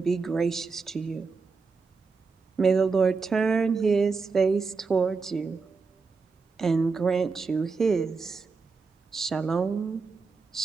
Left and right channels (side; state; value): left; quieter; 4.6 dB